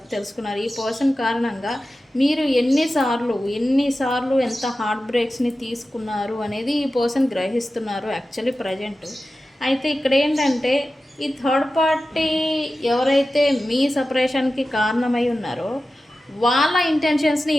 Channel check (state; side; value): normal; both; correlation 0.94